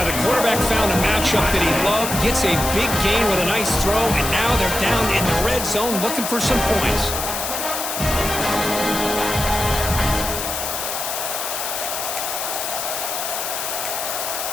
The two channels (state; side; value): noise; left; hiss, 4 dB below the sound